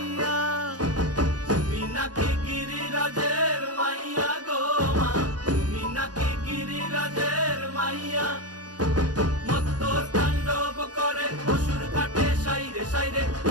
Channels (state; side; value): late; left; 0.69 ms